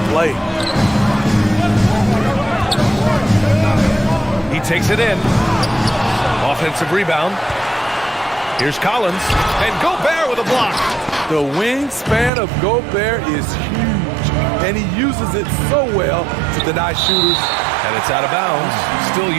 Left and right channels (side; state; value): left; drops out; at 12.3 s